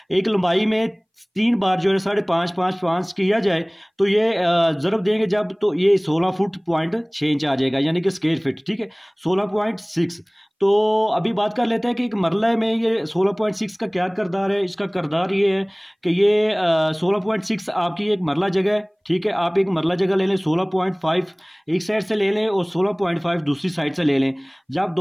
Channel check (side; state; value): both; identical; correlation 1.00